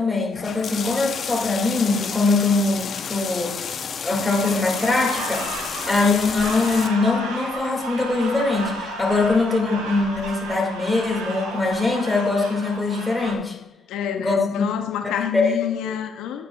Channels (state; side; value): quieter; right; 3.1 dB